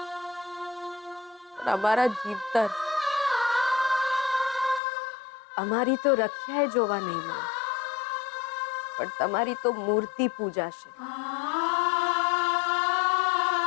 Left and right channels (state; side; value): drops out; right; at 4.8 s